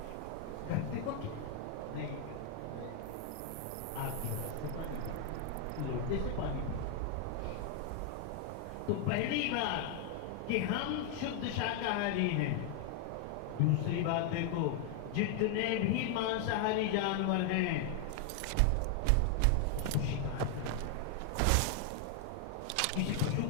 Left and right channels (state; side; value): different; both; correlation 0.00